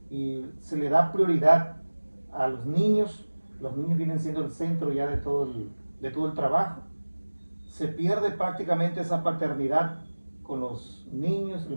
y se le da prioridad a los niños. Los niños vienen siendo el centro ya de todo el trabajo. Se pierde prácticamente esa paternidad con los niños.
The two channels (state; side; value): inverted; both; correlation -1.00